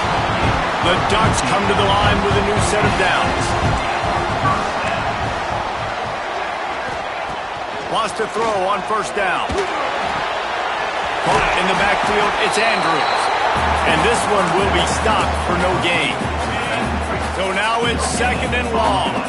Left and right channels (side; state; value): both; identical; correlation 1.00